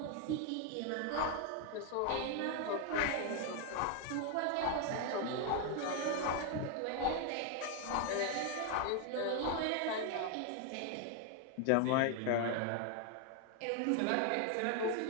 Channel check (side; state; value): both; different; correlation 0.01